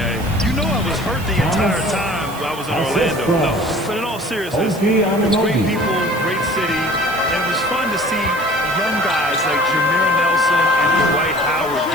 You know I was hurt the entire time I was in Orlando. No, but in all seriousness, it's great people, great city, and it was fun to see young guys like Jameer Nelson and Dwight Howard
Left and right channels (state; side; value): noise; right; hiss, 17 dB below the sound